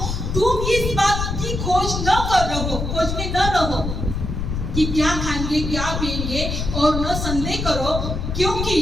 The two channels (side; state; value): left; noise; rumble, 3 dB below the sound